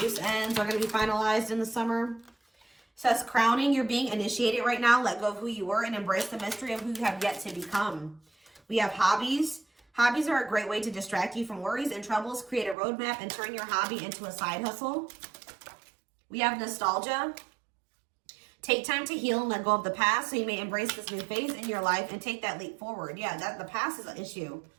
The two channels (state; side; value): drops out; left; at 12.8 s